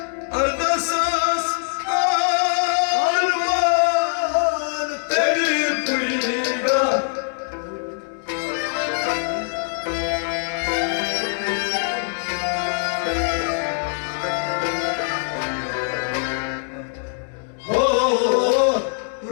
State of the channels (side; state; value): right; silent; digital silence